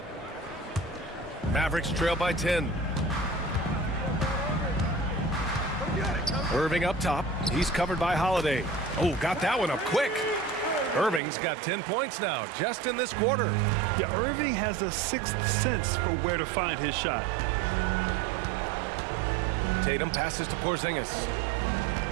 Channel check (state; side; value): drops out; left; at 11.2 s